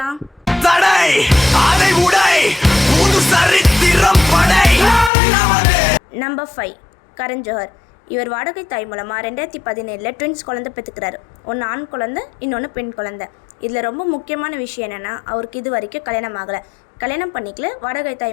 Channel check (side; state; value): right; drops out; at 5.1 s